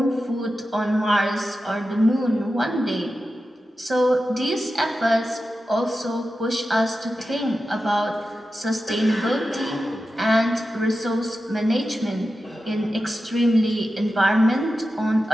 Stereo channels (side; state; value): both; normal; correlation 0.92